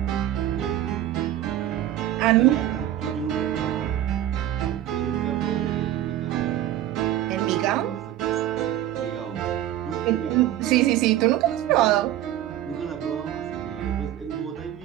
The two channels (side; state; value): left; quieter; 12.4 dB